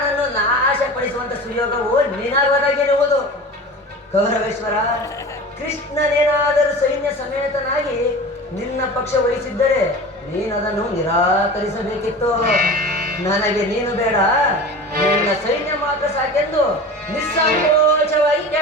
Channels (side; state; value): both; normal; correlation 0.35